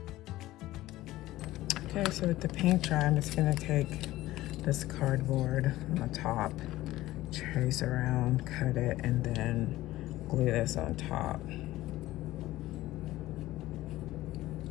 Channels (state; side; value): quieter; right; 16.5 dB